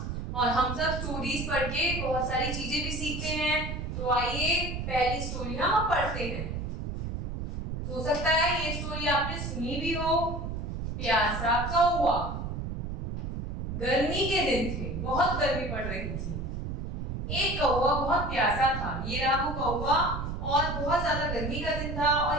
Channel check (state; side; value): noise; right; rumble, 4 dB below the sound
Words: और हम सब स्टोरीज पढ़ के बहुत सारी चीजें भी सीखते हैं। तो आइए पहली स्टोरी हम पढ़ते हैं। हो सकता है ये स्टोरी आपने सुनी भी हो। प्यासा कौवा। गर्मी के दिन थे, बहुत गर्मी पड़ रही थी। एक कौवा बहुत प्यासा था। ये रहा वो कौवा, और बहुत ज्यादा गर्मी का दिन था